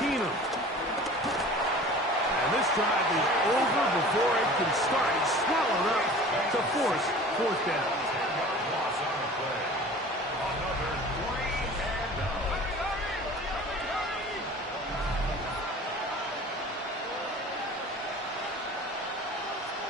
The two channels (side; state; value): both; normal; correlation 0.42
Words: And this drive is over before it can start. It's swallowed up to force 4th down.